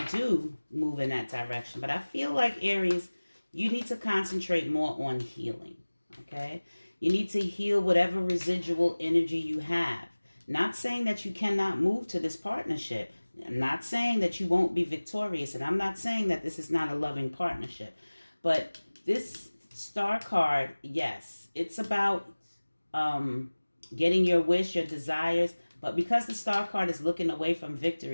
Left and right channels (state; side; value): inverted; both; correlation -1.00